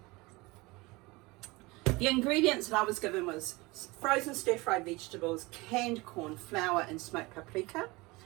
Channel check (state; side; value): quieter; left; 23.3 dB